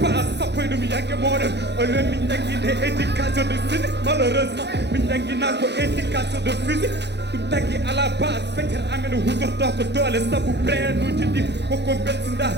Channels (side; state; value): left; late; 0.50 ms